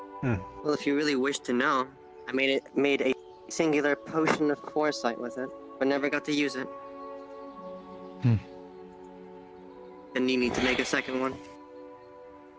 Hmm. Well, if you really wish to know, I made a singular potion of foresight with it, but never got to use it. Hmm. And you need to make a second one.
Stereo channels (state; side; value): identical; both; correlation 1.00